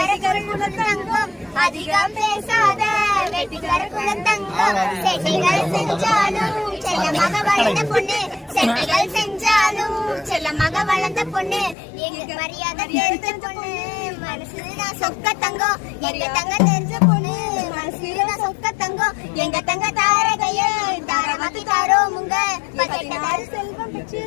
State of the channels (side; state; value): right; drops out; at 11.8 s